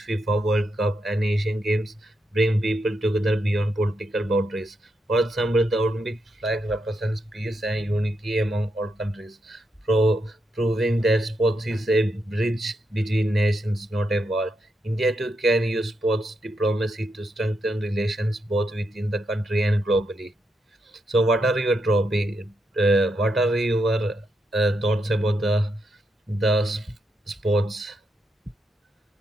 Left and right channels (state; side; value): normal; both; correlation 0.82